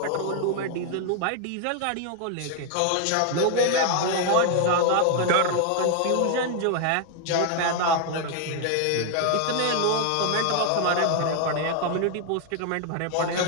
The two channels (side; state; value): both; different; correlation 0.00